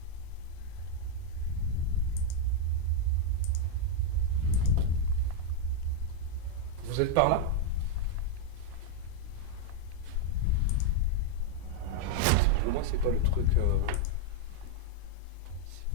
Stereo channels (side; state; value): both; different; correlation 0.00